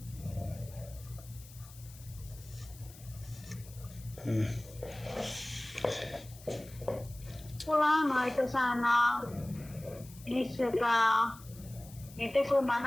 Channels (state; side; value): noise; left; hiss, 20 dB below the sound